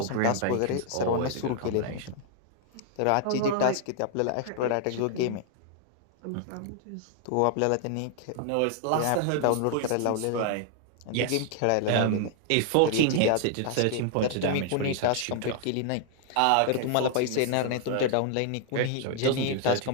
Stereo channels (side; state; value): both; different; correlation 0.00